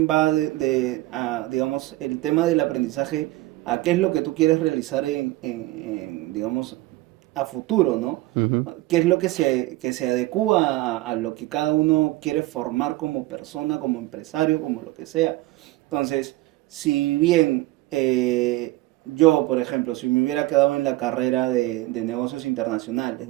va digamos, el tema del aprendizaje a qué es lo que tú quieres realizar digamos, a futuro, ¿no? Ujú, ¿Qué es lo que se adecúa a lo que cada uno quiere formar como persona, como empresario, como lo que sea? Entonces, si bien yo, por ejemplo, si me hubiera quedado en la carrera de negocios internacionales,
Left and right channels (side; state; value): left; quieter; 18.4 dB